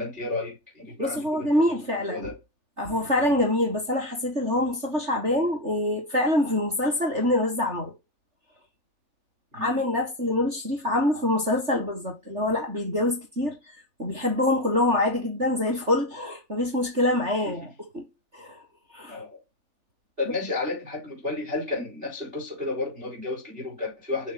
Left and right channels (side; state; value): left; late; 3.3 ms